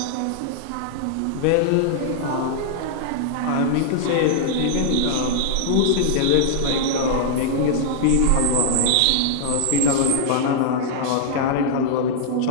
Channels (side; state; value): both; different; correlation -0.01